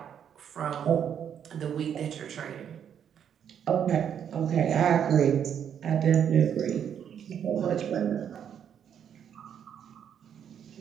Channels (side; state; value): left; quieter; 8.7 dB